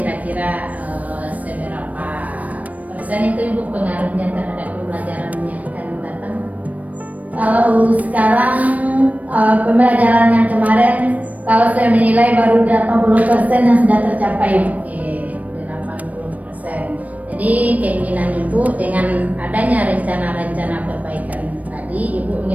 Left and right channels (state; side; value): late; left; 0.071 ms